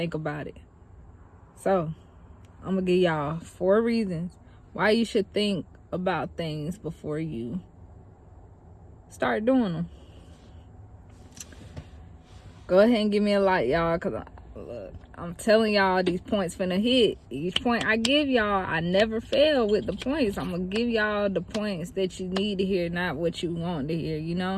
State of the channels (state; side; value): identical; both; correlation 1.00